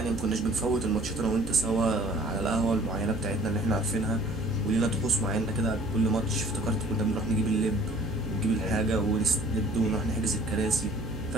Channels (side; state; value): right; noise; hum, 11 dB below the sound